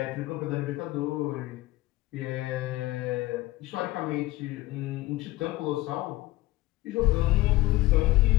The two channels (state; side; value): quieter; right; 18.2 dB